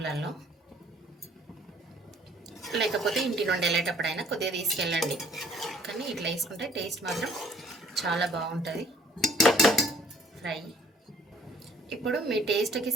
లేకపోతే ఇంటి నుండి వెళ్ళేటప్పుడైనా కొద్దిగా తీసుకెళ్ళండి. కానీ ఇట్లా వేసుకుంటే టేస్ట్ మాత్రం చాలా బాగుంటుంది ఫ్రై. ఇప్పుడు మీ టేస్ట్కి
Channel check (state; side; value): normal; both; correlation 0.57